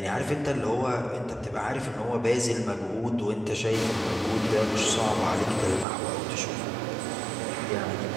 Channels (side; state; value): left; drops out; at 5.9 s